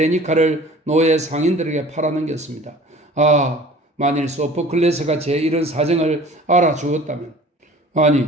노예 상인들에게 팔아넘겼습니다. 아, 만일 소포클레스가 제 이런 사정을 알아주었다면. 아니,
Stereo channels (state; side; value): normal; both; correlation 0.46